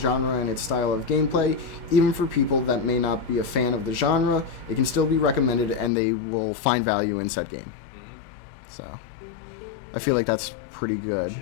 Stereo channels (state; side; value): drops out; right; at 5.9 s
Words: and its style of gameplay. Even for people that may not be a fan of the genre, it can still be recommended, and they will find value in said game. Mm-hmm. So, I feel like that's pretty good. We